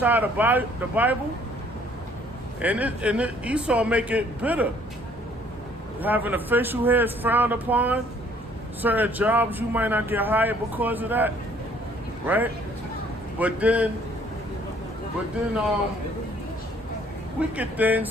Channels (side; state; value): both; normal; correlation 0.60